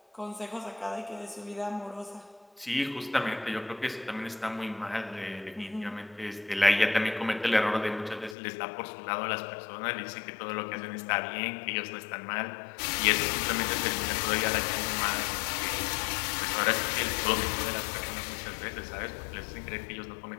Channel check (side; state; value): right; drops out; at 8.3 s